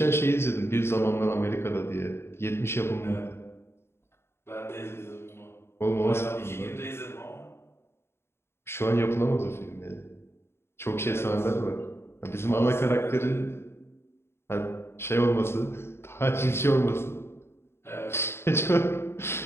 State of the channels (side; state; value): right; late; 0.12 ms